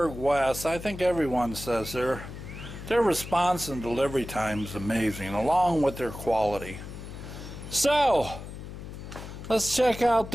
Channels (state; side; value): noise; left; hum, 11 dB below the sound